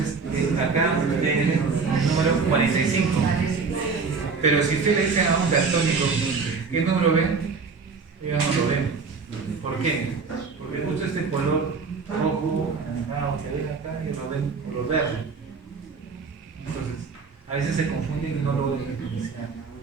acá tiene el número 45. Pero si usted le dice a un daltónico, ¿qué número ven? Ellos no lo ven. ¿Por qué? Porque justo este color rojo, anaranjado, que ven acá, y lo ven color verde. Entonces, a veces se confunden y no lo ven diferenciar.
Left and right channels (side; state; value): left; quieter; 4.9 dB